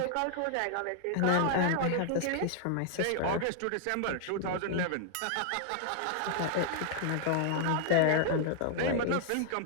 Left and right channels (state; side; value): different; both; correlation 0.00